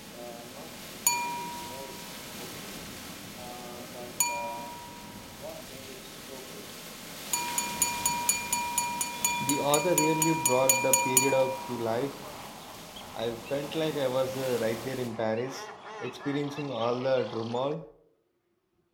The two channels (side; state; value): both; identical; correlation 1.00